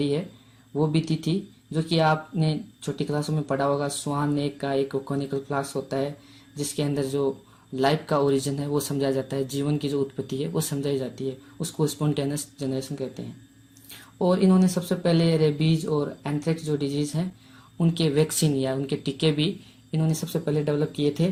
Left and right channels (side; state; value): both; identical; correlation 1.00